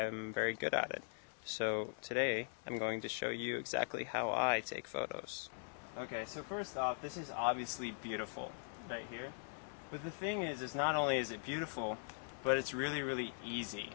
very good at it. So today I'm going to show you exactly how I take photos. Okay, so first off, this is obviously beautiful right here. But the thing is not only is it beautiful, but it's really easy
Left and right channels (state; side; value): silent; right; digital silence